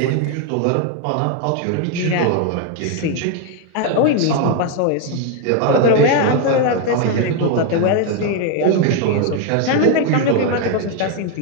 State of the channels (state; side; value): different; both; correlation 0.01